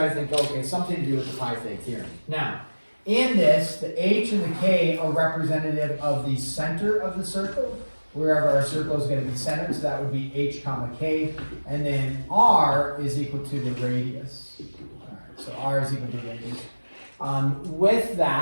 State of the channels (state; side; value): inverted; both; correlation -1.00